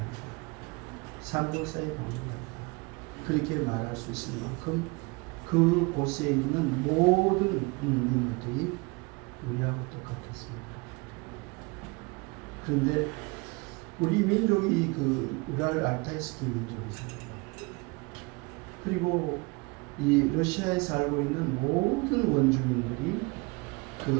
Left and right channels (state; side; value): quieter; left; 27.4 dB